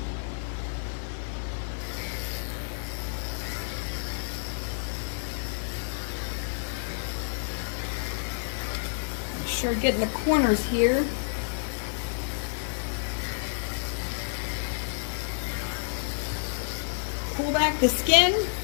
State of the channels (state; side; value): silent; right; digital silence